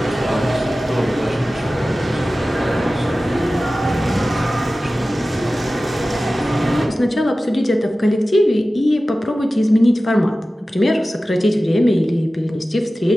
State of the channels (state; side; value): normal; both; correlation 0.96